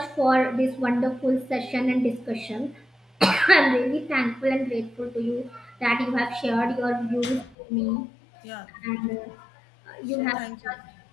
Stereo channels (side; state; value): right; drops out; at 7.6 s